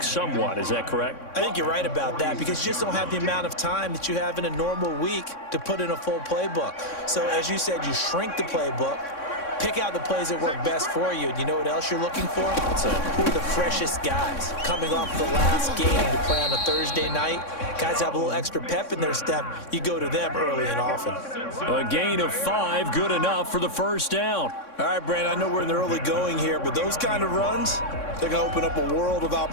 somewhat. Is that correct? I think you're right about that because you just don't have the amount of time that you have in a normal week to put in a full playbook. So as you said, you shrink the playbook, pick out the plays that work best for you. And you know what else you're looking for? Who are the freshest guys coming off the last game to play on a Thursday night? Guys have a little extra pep in their step. You go to them early and often. A gain of 5, good enough for the first down. All right, Brandon, I know we're in the early going here, but those kind of runs, they're going to open up a world of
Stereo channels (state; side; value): late; right; 3.6 ms